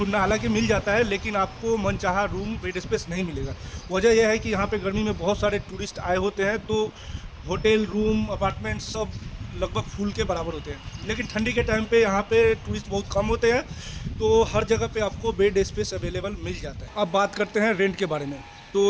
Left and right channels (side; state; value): both; identical; correlation 1.00